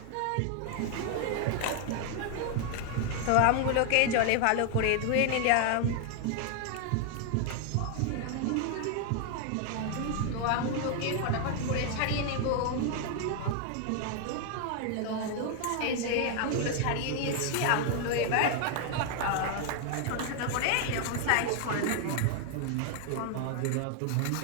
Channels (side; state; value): both; different; correlation 0.00